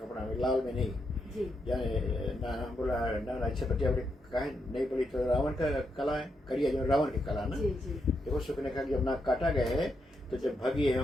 में, लाल में नहीं। जी जाने नाना बोला नाना अच्छा बतिया बोले कहे नहीं बोली तो रावण का कला है, करिया जो रावण की कला ना। जी जी देखो सुखने का जब नाक काटा गया है तो जब भगी है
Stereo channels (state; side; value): normal; both; correlation 0.82